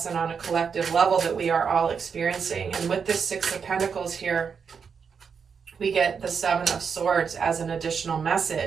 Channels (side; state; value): left; quieter; 6.3 dB